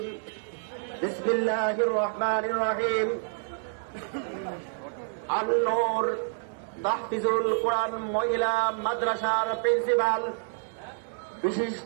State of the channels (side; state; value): left; silent; 59 dB below the other